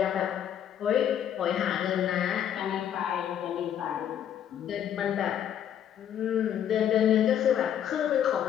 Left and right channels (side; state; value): right; quieter; 9.7 dB